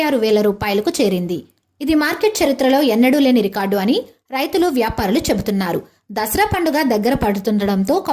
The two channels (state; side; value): identical; both; correlation 1.00